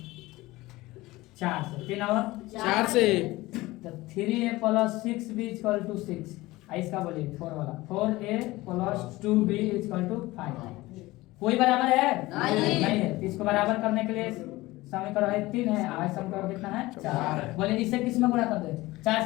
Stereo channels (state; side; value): quieter; right; 19.4 dB